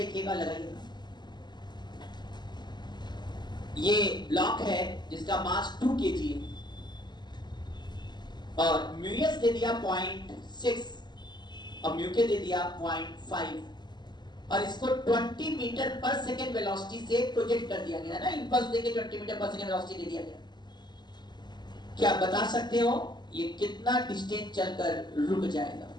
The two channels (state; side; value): late; right; 0.21 ms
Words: लगाइएगा। ये ब्लॉक है जिसका मास 2 kg है और म्यू एस दे दिया 0.6 और म्यू के दे दिया 0.5 और इसको 20 मीटर पर सेकेंड वेलोसिटी से प्रोजेक्ट कर दिया गया ना, इंपल्स देके 20 मीटर पर सेकेंड वेलोसिटी दे दिया गया। क्या बता सकते हो ये कितना डिस्टेंस चलकर रुक जाएगा?